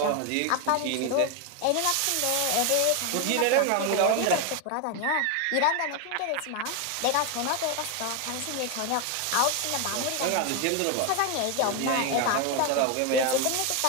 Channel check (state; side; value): different; both; correlation 0.01